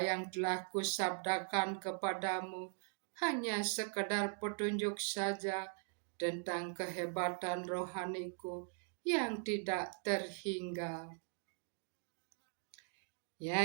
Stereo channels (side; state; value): left; silent; 51 dB below the other